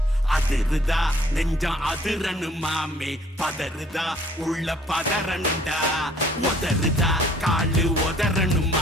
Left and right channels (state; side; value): normal; both; correlation 0.58